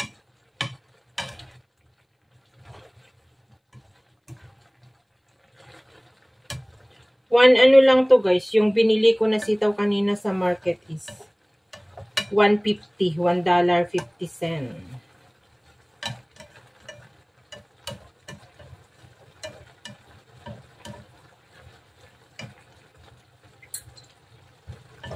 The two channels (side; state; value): both; identical; correlation 1.00